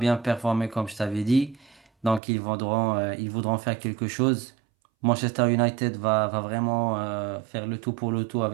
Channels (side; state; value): left; drops out; at 2.2 s